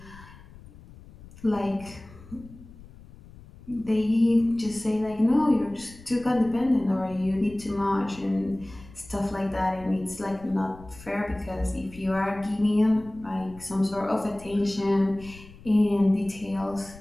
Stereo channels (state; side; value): noise; left; rumble, 20 dB below the sound